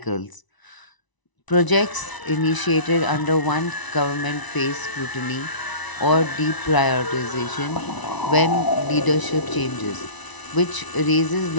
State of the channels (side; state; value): right; late; 1.0 ms